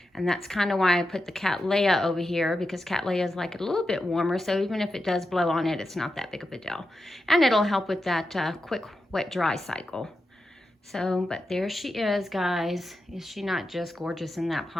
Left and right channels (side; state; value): both; normal; correlation 0.89